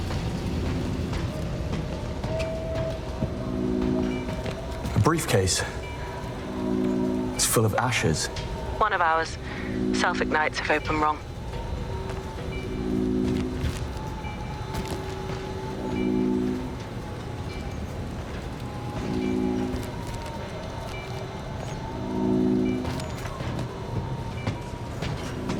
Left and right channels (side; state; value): both; identical; correlation 1.00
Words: Briefcase. It's full of ashes. One of ours. Self-ignites if open wrong.